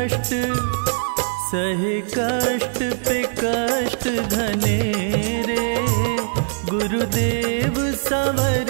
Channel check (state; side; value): silent; left; digital silence